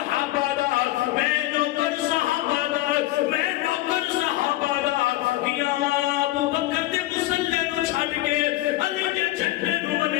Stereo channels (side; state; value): right; quieter; 16.8 dB